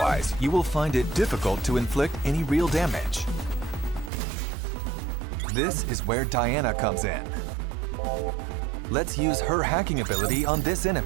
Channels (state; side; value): drops out; left; at 4.1 s